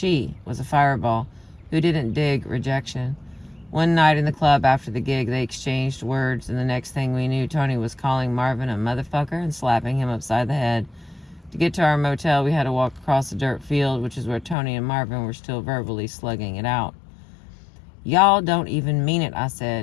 was a fireball who didn't dig rejection. One night in the club after the gig, they exchanged words, and the next thing we knew, Tony was calling Marvin a motherfucker and slapping him upside the head. To get to our motel, we had to walk across a dirt field, which is where Tony and Marvin were still verbally slugging it out. Y'all don't even mean it, I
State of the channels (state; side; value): drops out; right; at 14.6 s